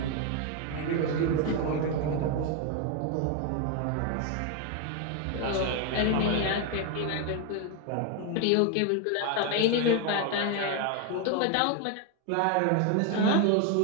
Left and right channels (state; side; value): different; both; correlation 0.01